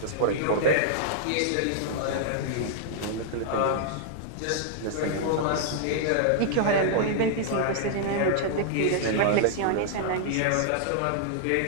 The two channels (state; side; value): different; both; correlation -0.01